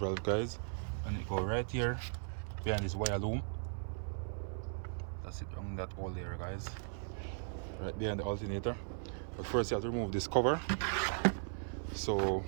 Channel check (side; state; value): left; silent; 53 dB below the other